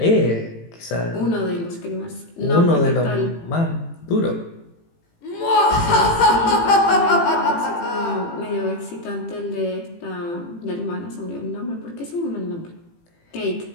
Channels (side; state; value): right; late; 18 ms